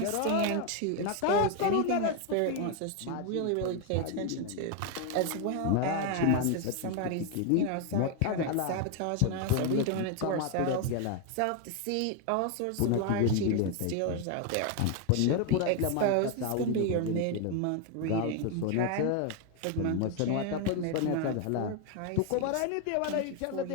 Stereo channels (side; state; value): both; different; correlation 0.01